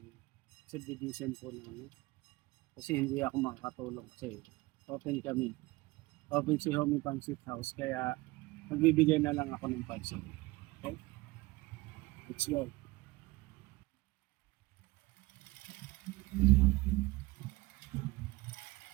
subdivision po namin. Kasi hindi ako makakatulong kasi open kami. Open si Homie Pansit House kaya magbibigay na lang ako ng pansit. Okay? Let's go.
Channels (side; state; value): left; quieter; 21.9 dB